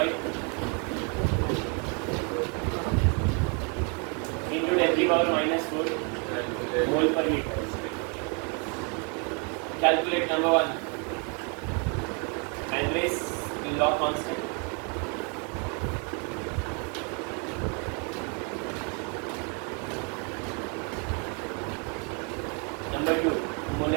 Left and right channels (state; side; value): quieter; left; 36.1 dB